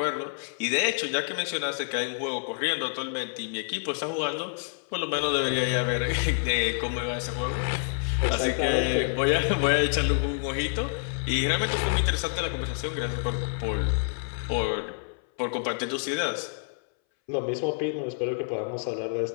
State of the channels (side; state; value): right; silent; 60 dB below the other